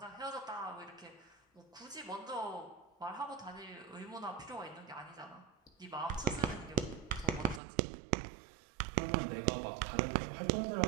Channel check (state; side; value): drops out; left; at 7.6 s